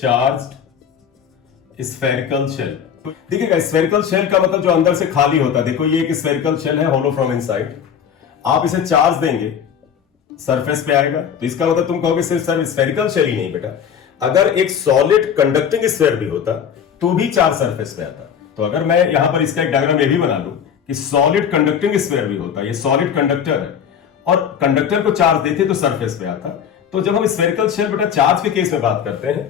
spherical shell. देखिएगा स्फेरिकल शेल का मतलब जो अंदर से खाली होता है। देखो ये एक स्फेरिकल शेल है, होलो फ्रॉम इनसाइड। आप इसे चार्ज देंगे सरफेस पे आएगा, तो इसका मतलब तुम कहोगे सिर्फ स्फेरिकल शेल ही नहीं बेटा, अगर एक सॉलिड कंडक्टिंग स्फीयर भी होता तो भी चार्ज सरफेस पे आता। तो अगर मैं यहां पर इसका एक डायग्राम ये भी बना लूं कि सॉलिड कंडक्टिंग स्फीयर भी होता, ये सॉलिड कंडक्टर है और कंडक्टर को चार्ज देते तो सरफेस पे आता। तो जब हम स्फेरिकल शेल बेटा चार्ज के केस में बात करते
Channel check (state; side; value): quieter; right; 8.1 dB